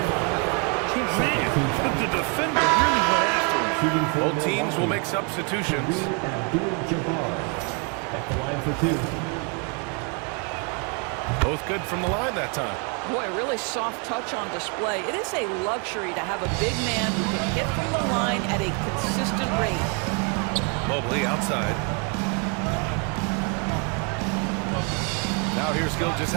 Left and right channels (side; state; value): left; quieter; 36.3 dB